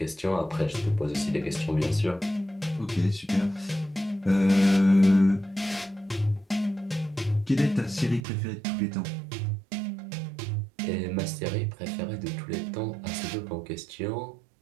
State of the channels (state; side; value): drops out; left; at 8.2 s